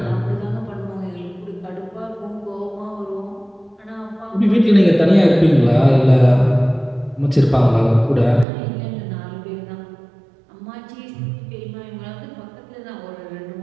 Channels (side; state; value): left; drops out; at 8.5 s